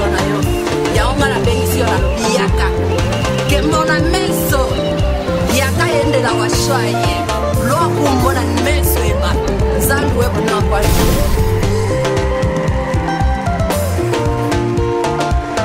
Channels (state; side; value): identical; both; correlation 1.00